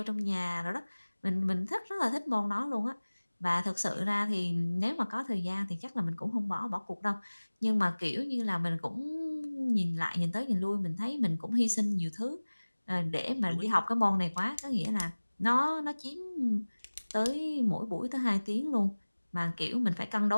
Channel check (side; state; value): both; inverted; correlation -1.00